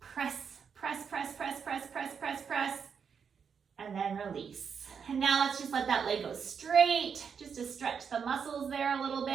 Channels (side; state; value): left; quieter; 6.6 dB